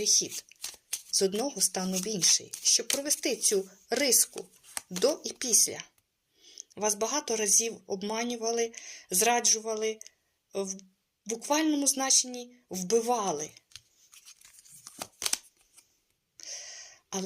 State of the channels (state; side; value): identical; both; correlation 1.00